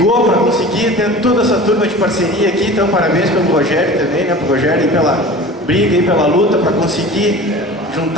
para conseguir ter toda essa turma de parceria aqui, então parabéns pelo Rogério também, né, pro Rogério pela briga e pela luta para conseguir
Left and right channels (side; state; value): both; normal; correlation 0.38